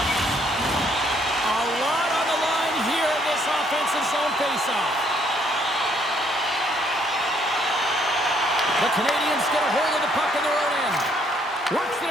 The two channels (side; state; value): both; normal; correlation 0.67